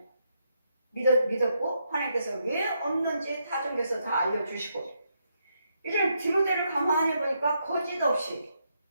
믿었고 하나님께서 왜 없는지 타종교에서 다 알려주시고 이제 디모데를 가만히 보니까 거짓 없이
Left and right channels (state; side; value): inverted; both; correlation -0.79